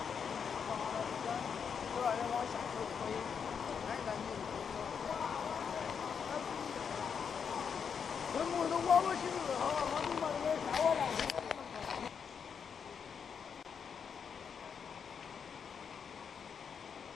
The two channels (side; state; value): right; quieter; 6.8 dB